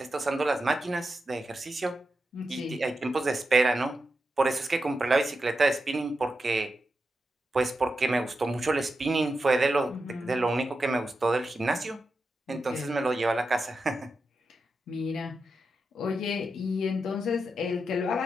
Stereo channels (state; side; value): normal; both; correlation 0.88